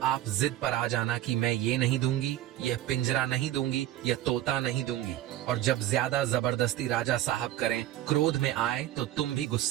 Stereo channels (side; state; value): left; quieter; 13.5 dB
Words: आप जिद पर आ जाना कि मैं ये नहीं दूंगी, यह पिंजरा नहीं दूंगी, यह तोता नहीं दूंगी। और जब ज्यादा जबरदस्ती राजा साहब करें, क्रोध में आए तो तुम भी